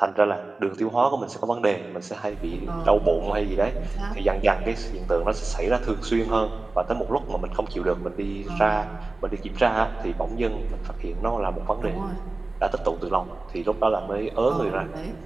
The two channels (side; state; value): left; quieter; 3.3 dB